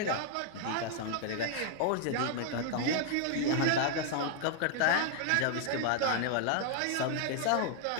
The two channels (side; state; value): both; different; correlation 0.00